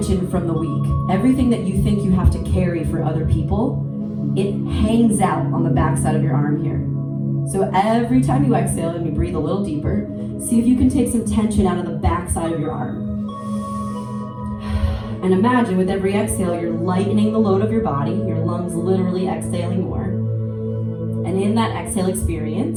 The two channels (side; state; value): both; identical; correlation 1.00